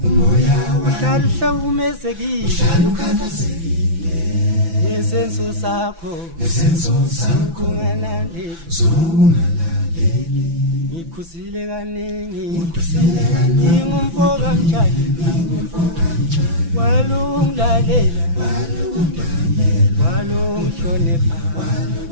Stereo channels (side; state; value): left; late; 6.0 ms